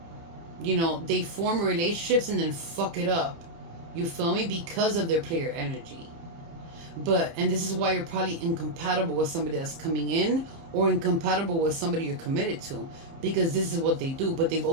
You know, they form relationships and then fuck it up. You feel me? Because of their player energy. And this is why you're probably incompatible with somebody that's coming in, or incompatible with somebody you're committed to, because this is what they do. But they've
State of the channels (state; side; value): late; left; 30 ms